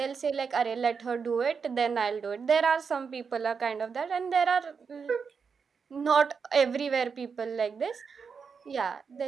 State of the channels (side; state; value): left; quieter; 5.8 dB